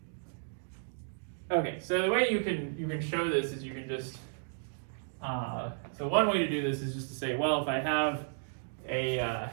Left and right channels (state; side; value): silent; left; digital silence